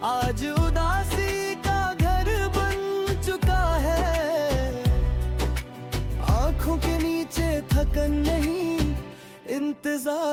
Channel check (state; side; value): identical; both; correlation 1.00